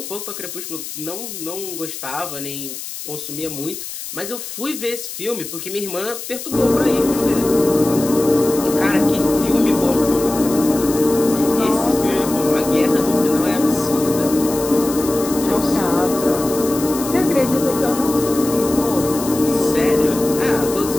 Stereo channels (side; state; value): left; noise; hiss, 9 dB below the sound